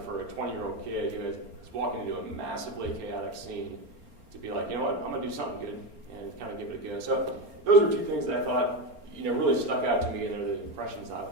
for a 20-year-old kid who is walking into a massively chaotic scene to be like, you know what, I'm going to do something good and kind of give it a go. So those are two things that I thought, really stuck out to me, and they're the impressions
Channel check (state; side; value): late; left; 4.3 ms